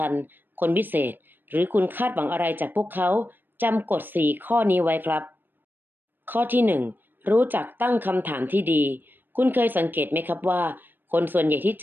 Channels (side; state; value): left; late; 0.094 ms